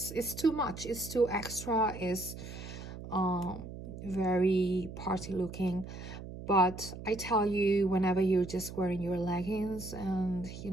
too much, it's too extra, it's very party looking. But I tell you, whenever you're just wearing your leggings and, you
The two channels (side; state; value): right; noise; hum, 11 dB below the sound